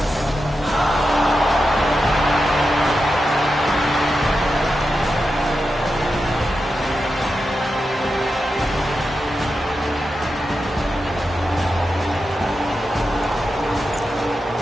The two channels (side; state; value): both; normal; correlation 0.89